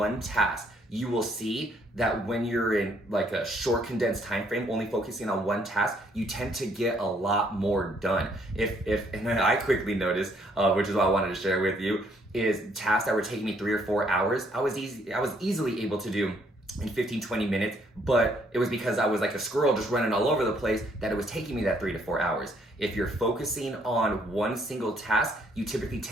task. You will see that when you're in like a short condensed time frame, only focusing on one task, you tend to get a lot more done. And then I quickly noticed, which is what I wanted to share with you, is tasks that were taking me 3 or 4 hours, I was easily able to do in 15-20 minutes, but it was because I was like a squirrel just running all over the place that it was taking me that 3 to 4 hours. If you're focusing on one single task, you typically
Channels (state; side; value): normal; both; correlation 0.67